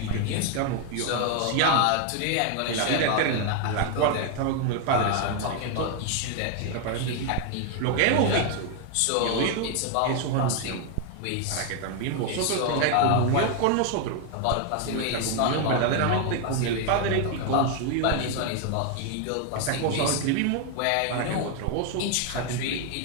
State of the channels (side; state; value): both; different; correlation 0.01